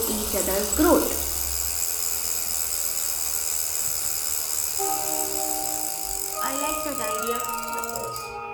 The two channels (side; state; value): both; identical; correlation 1.00